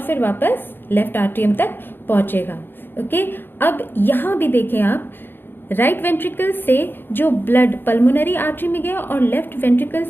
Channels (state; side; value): late; right; 0.10 ms